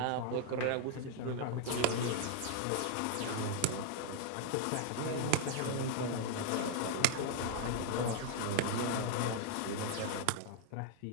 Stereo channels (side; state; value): both; different; correlation 0.00